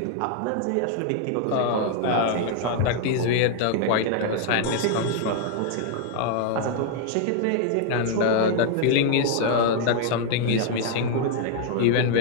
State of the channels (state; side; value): different; both; correlation 0.00